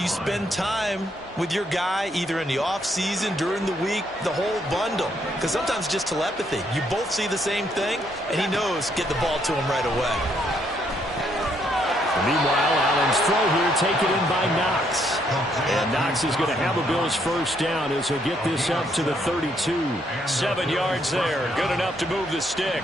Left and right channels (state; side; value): normal; both; correlation 0.72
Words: spend time with your guy either in the offseason, during the week, the whole bundle. Because sometimes just telepathy. You both see the same thing, and he knows get the ball to him right away. Meanwhile, Allen's throw here taken in by Knox. And Knox is going to have a Bills first down as he'll get this up to the 32. 7 yards there. Good enough to move the